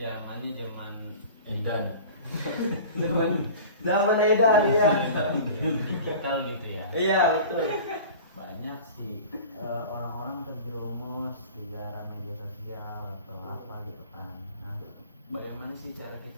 zaman Edan. Zaman edan ya. digital gitu ya. Iya betul. Banyak sih orang-orang terjerumus di dalam media sosial atau apa gitu kan. Nah, bagaimana sih cara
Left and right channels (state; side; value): inverted; both; correlation -0.39